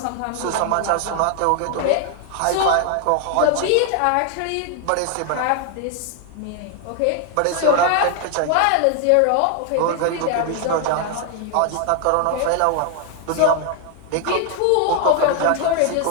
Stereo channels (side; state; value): both; different; correlation 0.00